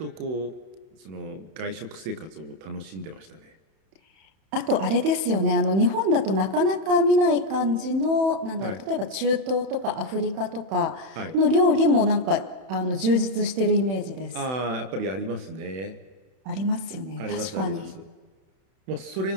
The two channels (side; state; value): left; late; 31 ms